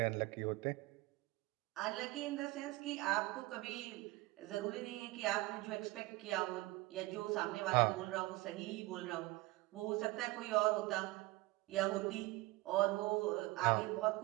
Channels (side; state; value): left; quieter; 20.4 dB